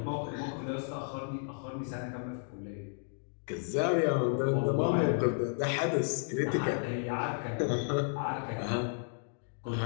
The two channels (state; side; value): silent; right; digital silence